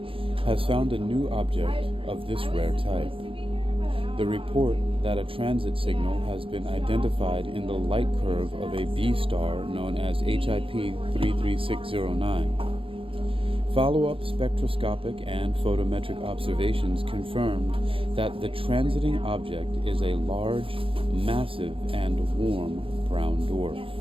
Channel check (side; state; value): left; late; 0.26 ms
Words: has found a new object of this rare type. The report that a transit signal has been identified in the light curve of a B star known as HIP 33609. Follow-up spectroscopic and photometric observations confirmed that the transiting object is a large, massive, and warm brown dwarf.